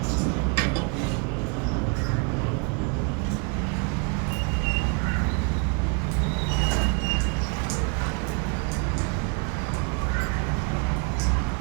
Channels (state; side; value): quieter; left; 36.0 dB